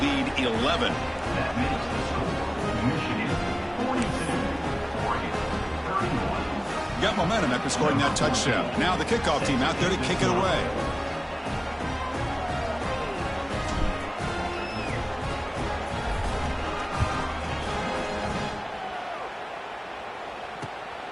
11. Got momentum after scoring that touchdown. Now the kickoff team out there to kick it away.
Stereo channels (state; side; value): identical; both; correlation 1.00